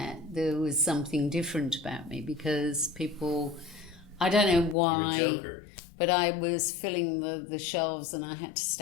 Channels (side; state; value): right; drops out; at 4.8 s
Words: there was something different about me because people, I don't know why. You're a joker. But I was filling the shelves and I had to